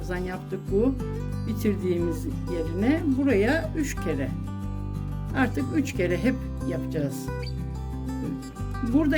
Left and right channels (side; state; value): both; identical; correlation 1.00